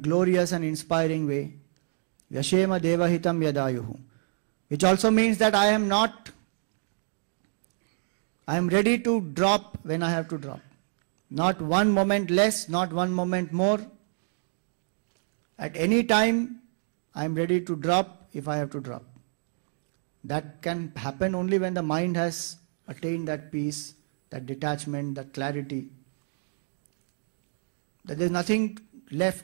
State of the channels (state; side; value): silent; left; digital silence